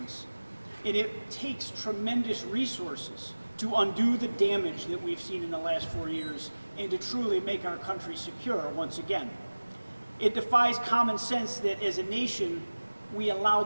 And it takes tremendous resources to undo the damage that we've seen in the last 4 years and to truly make our country secure once again. It defies common sense that as a nation, we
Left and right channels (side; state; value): both; inverted; correlation -1.00